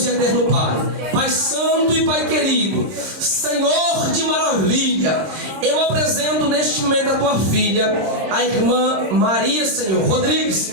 e eterno Pai, Pai santo e Pai querido, Senhor de maravilha, eu apresento neste momento a tua filha, a irmã Maria, Senhor,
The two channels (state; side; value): late; left; 26 ms